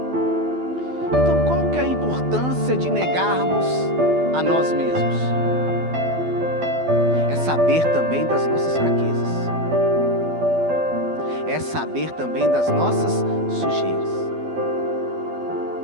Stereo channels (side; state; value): left; late; 12 ms